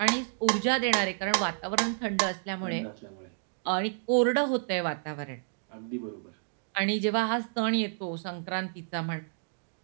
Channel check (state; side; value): silent; left; digital silence